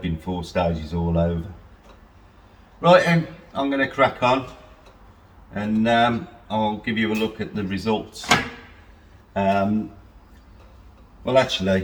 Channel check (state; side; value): identical; both; correlation 1.00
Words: been 4 stages all over. Right then, I'm going to crack on and I'll give you a look at the results. Well, actually,